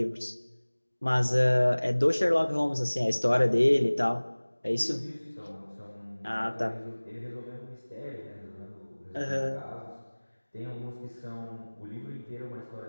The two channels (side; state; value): both; inverted; correlation -1.00